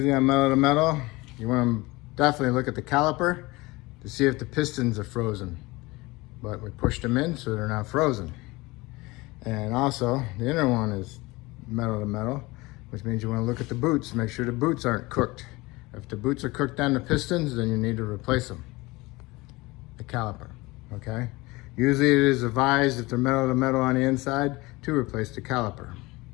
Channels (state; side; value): quieter; right; 22.3 dB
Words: on metal to metal, you want to definitely look at the caliper to see if the pistons are frozen. But we pushed them in so they're not frozen. And also, the inner one is metal to metal, which means you want to look at the boots, make sure the boots aren't cooked. If the boots are cooked on the pistons, then you need to replace them, the caliper, okay? Usually it is advised if they're metal to metal on the inside to replace the caliper,